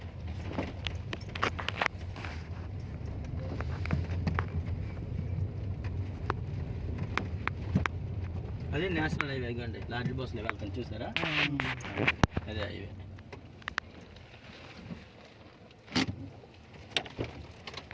అదే నేషనల్ హైవే అండి, లార్జ్ బస్సులో వెళ్తాను చూసారా, అదే హైవే.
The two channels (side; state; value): both; identical; correlation 1.00